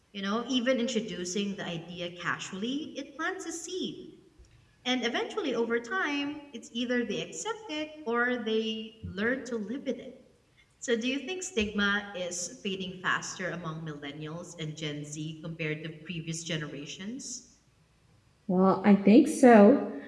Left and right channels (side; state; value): both; identical; correlation 1.00